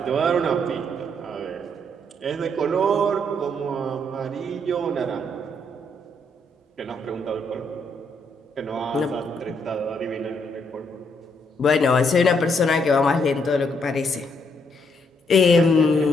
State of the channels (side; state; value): both; normal; correlation 0.73